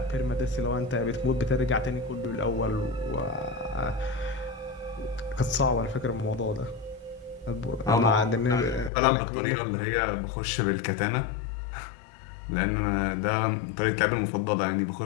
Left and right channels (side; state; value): right; drops out; at 8.9 s